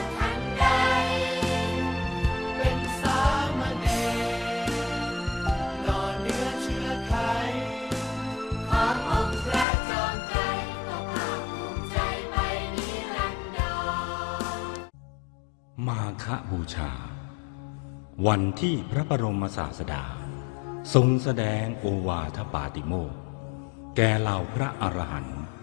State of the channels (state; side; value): drops out; right; at 9.7 s